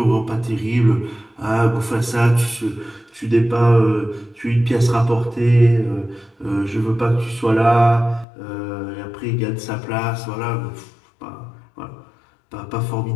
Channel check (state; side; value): drops out; right; at 8.2 s